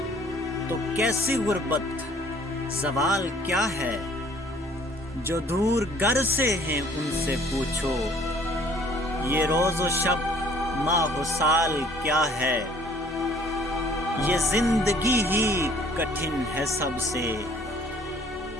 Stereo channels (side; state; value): both; normal; correlation 0.57